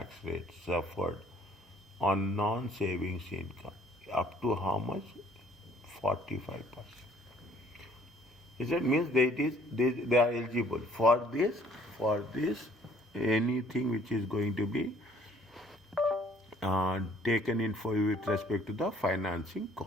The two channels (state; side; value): normal; both; correlation 0.59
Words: rate suffered on non-savings income, up to how much? 45%. Is it means they are eligible for this anything which is going to be taken in for with respect to the financing